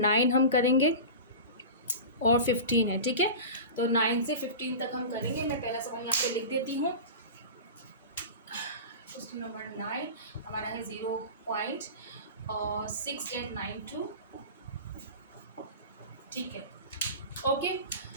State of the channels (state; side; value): inverted; both; correlation -0.31